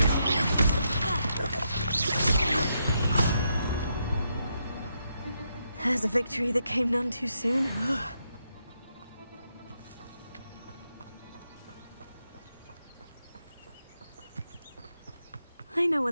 There's a victory that came none too soon. I know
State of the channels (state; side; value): inverted; both; correlation -0.81